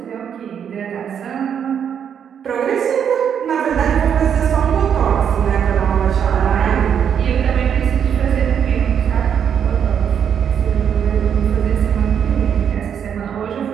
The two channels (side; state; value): left; quieter; 8.1 dB